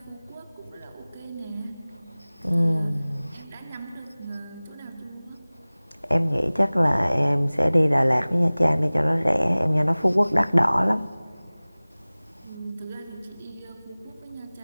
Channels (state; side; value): inverted; both; correlation -0.99